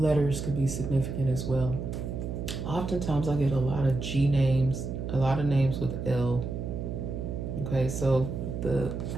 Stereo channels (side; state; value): right; noise; hum, 5 dB below the sound